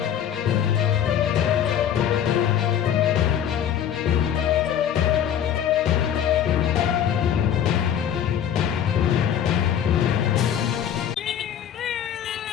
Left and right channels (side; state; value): right; quieter; 9.5 dB